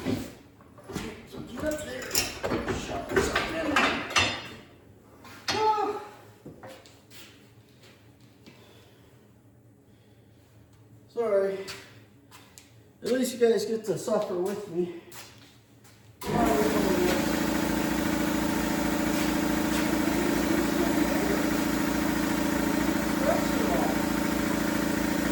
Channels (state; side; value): identical; both; correlation 1.00